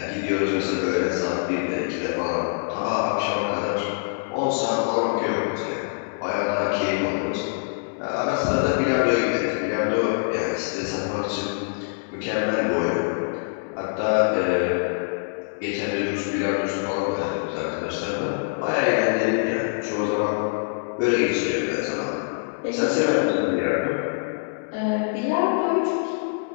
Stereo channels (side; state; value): right; silent; digital silence